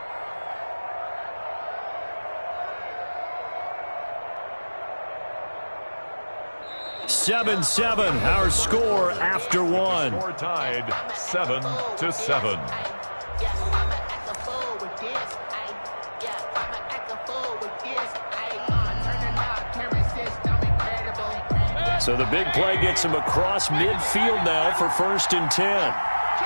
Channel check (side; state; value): both; inverted; correlation -1.00